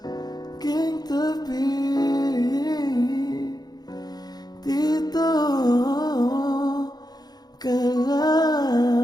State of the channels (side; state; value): right; late; 0.19 ms